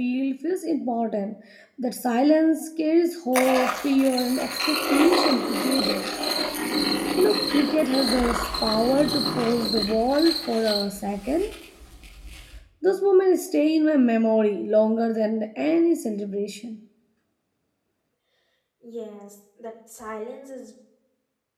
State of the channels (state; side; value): identical; both; correlation 1.00